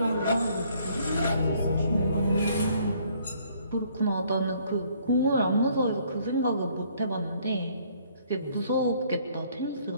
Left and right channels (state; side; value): inverted; both; correlation -0.63